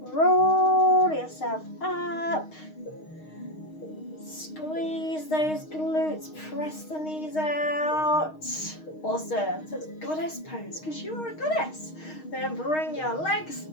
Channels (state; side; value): late; right; 6.4 ms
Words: Roll yourself up. Squeeze those glutes, press the knees out. Awesome. So it's goddess pose because you are a goddess. Then bring your legs